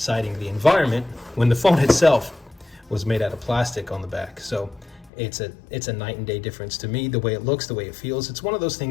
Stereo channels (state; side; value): drops out; right; at 5.1 s